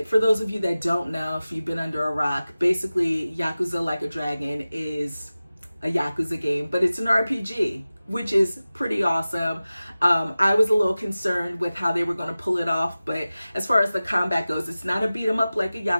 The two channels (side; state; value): both; inverted; correlation -0.96